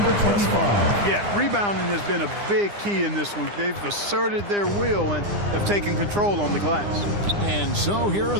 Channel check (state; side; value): late; left; 9.8 ms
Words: 25. Yeah, rebounding has been a big key in this one. They've asserted their will and have taken control on the glass. And so here are